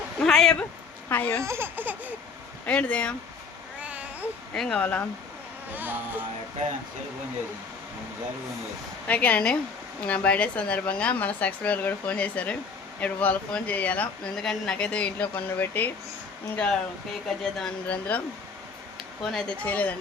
హాయ్ అబ్బా హాయ్ ఏంటిది ఏం కావాలా ఓకేనండి నా బర్త్డే సందర్భంగా మన సబ్స్క్రైబర్లు కూడా ఫోన్ చేశారు. ఇప్పుడు వాళ్ళు ఫోన్ చేయాలా ఎందుకంటే నాకైతే ఇంట్లో పనులు పెట్టి ఇంకా కేక్ కట్ చేద్దాం అందులో ఫోన్ అయితే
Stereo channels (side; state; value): right; quieter; 5.0 dB